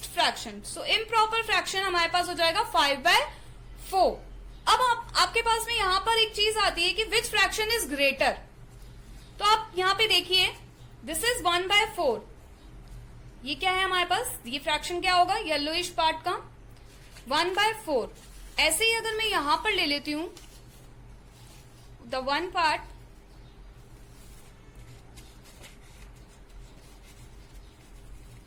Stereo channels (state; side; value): identical; both; correlation 1.00